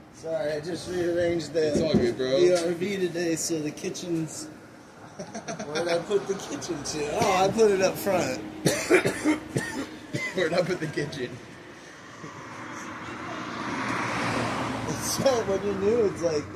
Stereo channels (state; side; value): identical; both; correlation 1.00